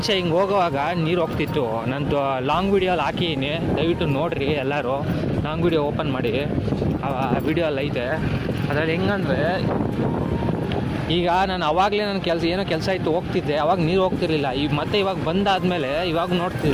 ಹಿಂಗೆ ಹೋಗುವಾಗ ನೀರು ಹೋಗ್ತಿತ್ತು. ನಂದು ಲಾಂಗ್ ವಿಡಿಯೋಲ್ಲಿ ಹಾಕಿದ್ದೀನಿ, ದಯವಿಟ್ಟು ನೋಡಿರಿ ಎಲ್ಲರೂ. ಲಾಂಗ್ ವಿಡಿಯೋ ಓಪನ್ ಮಾಡಿ, ಆ ವಿಡಿಯೋಲ್ಲಿ ಐತೆ. ಅದರಲ್ಲಿ ಹೆಂಗಂದರೆ, ಈಗ ನಾನು ಅವಾಗಲೇ ನನ್ನ ಏನೋ ಕೆಲಸ ಇತ್ತು, ಹೋಗ್ತಿದ್ದೆ. ಅವಾಗ ನೀರು ಹೋಗ್ತಿರ್ಲಿಲ್ಲ. ಮತ್ತೆ ಇವಾಗ ಬಂದಾದಮೇಲೆ ಇವಾಗ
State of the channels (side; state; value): both; identical; correlation 1.00